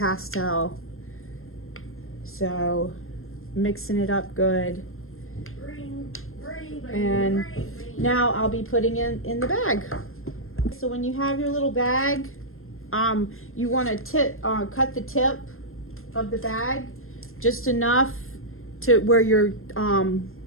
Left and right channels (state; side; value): late; right; 0.61 ms